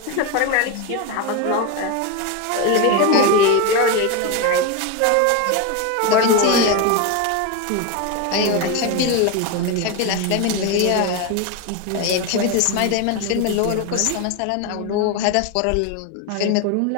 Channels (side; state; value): both; different; correlation 0.03